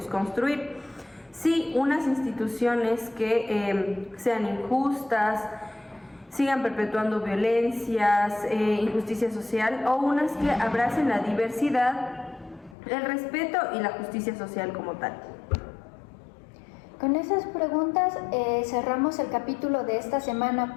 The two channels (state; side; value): drops out; right; at 12.8 s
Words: construir? Sí, unas instituciones que sean injustas, sigan perpetuando violencias, injusticia social, o unas que abracen la diversidad, el respeto y la justicia social como tal. Con esas preguntas cerramos el capítulo de esta